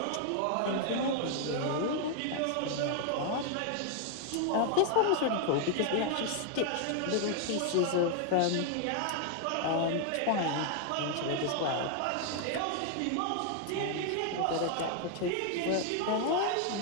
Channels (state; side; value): different; both; correlation 0.00